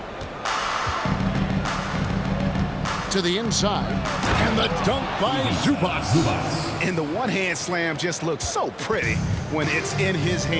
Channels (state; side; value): identical; both; correlation 1.00